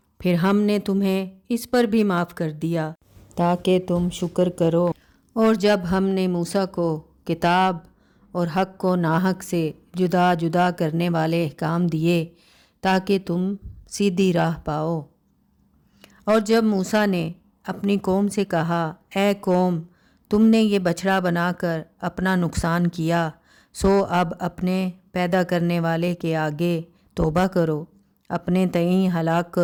پھر ہم نے تمہیں اس پر بھی معاف کر دیا تاکہ تم شکر کرو۔ اور جب ہم نے موسیٰ کو کتاب اور حق کو ناحق سے جدا جدا کرنے والے احکام دیے تاکہ تم سیدھی راہ پاؤ۔ اور جب موسیٰ نے اپنی قوم سے کہا، اے قوم، تم نے یہ بچڑا بنا کر اپنا نقصان کیا، سو اب اپنے پیدا کرنے والے کے آگے توبہ کرو، اپنے تئیں ہلاک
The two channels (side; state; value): both; identical; correlation 1.00